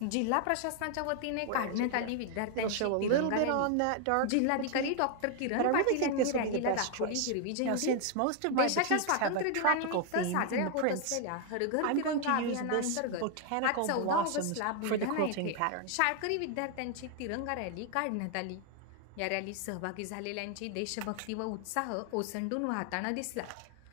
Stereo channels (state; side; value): different; both; correlation 0.00